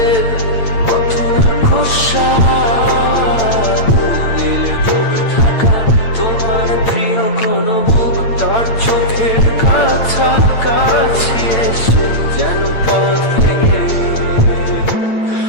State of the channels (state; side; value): late; right; 8.8 ms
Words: মতো খোসা নীলে ডুবে থাকা তোমার প্রিয় কোন মুখ তার চোখের কাছাকাছি এসে যেন পথ ভেঙে